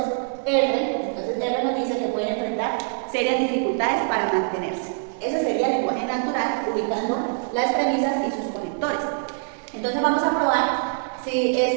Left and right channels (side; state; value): left; silent; digital silence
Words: R nos dice que pueden enfrentar serias dificultades para mantenerse. Ese sería el lenguaje natural, ubicando las premisas y sus conectores. Entonces vamos a probar si